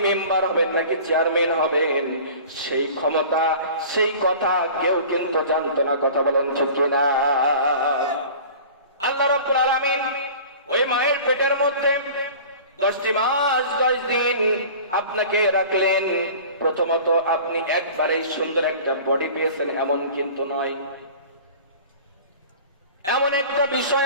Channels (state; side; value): inverted; both; correlation -0.41